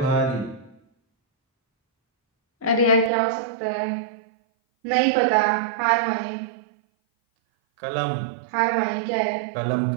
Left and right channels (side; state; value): left; drops out; at 3.1 s